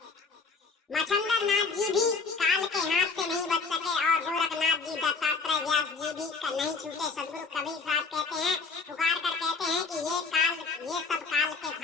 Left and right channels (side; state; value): right; quieter; 4.5 dB